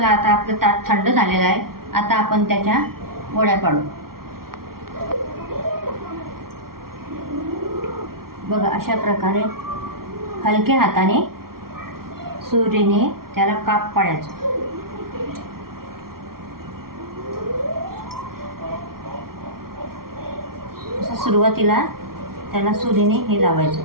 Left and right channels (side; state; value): left; late; 0.93 ms